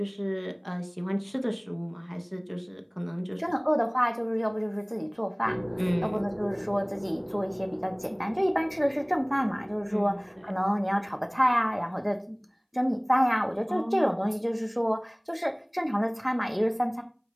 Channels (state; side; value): identical; both; correlation 1.00